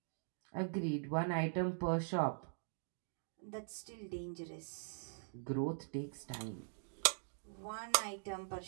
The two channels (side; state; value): left; silent; digital silence